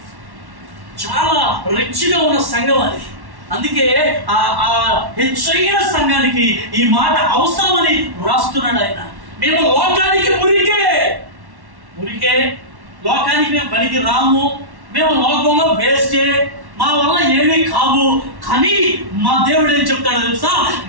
చాలా రిచ్గా ఉన్న సంఘం అది, అందుకే ఆ హెచ్చైన సంఘానికి ఈ మాట అవసరమని రాస్తున్నాడు ఆయన. మేము లోకానికి మురికే, లోకానికి మేము పనికి రాము, మేము లోకంలో వేస్టే, మా వల్ల ఏమీ కావు. కానీ మా దేవుడు ఏం చెప్తాడో తెలుసా?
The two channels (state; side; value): late; left; 1.1 ms